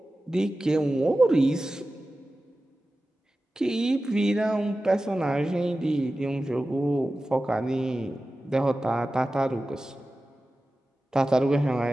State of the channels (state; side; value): normal; both; correlation 0.95